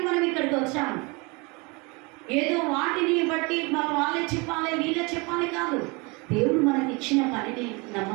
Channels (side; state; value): left; quieter; 28.3 dB